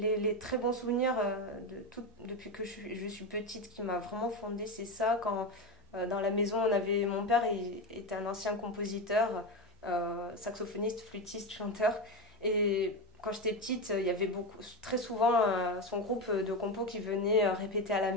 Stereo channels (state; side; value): noise; left; hum, 28 dB below the sound